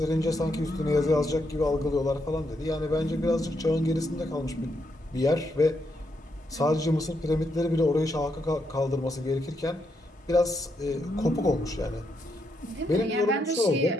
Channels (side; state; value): both; normal; correlation 0.80